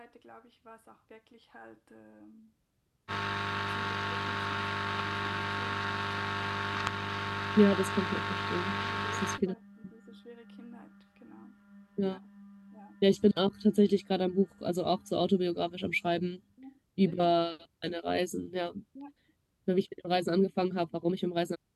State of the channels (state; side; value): identical; both; correlation 1.00